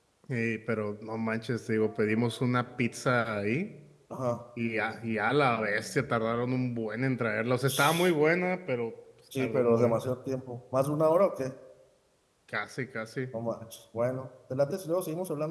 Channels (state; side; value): identical; both; correlation 1.00